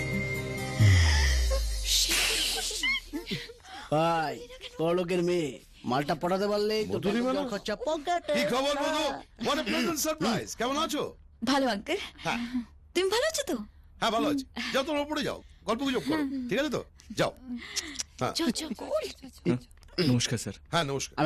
ভাই বড় লোকের মেয়ে, মালটা পটাতে পারলে খরচা পকেটে। কি খবর বলো? What a pleasant surprise. কেমন আছো? ভালো আঙ্কেল। হ্যাঁ তুমি ভালো আছো তো? হ্যাঁ ভালো আছি। যাও তোমরা উপরে যাও, গল্প গুজব করো, ঠিক আছে তো? যাও। হ্যাঁ নমস্কার স্যার। হ্যাঁ নমস্কার।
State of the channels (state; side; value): identical; both; correlation 1.00